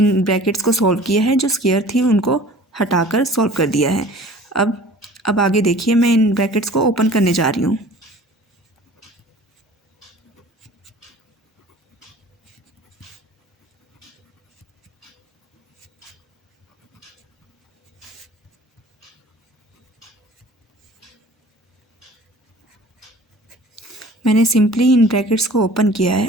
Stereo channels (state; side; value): normal; both; correlation 0.46